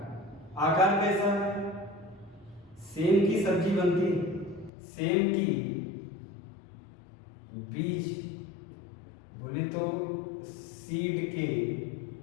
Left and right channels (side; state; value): right; drops out; at 4.7 s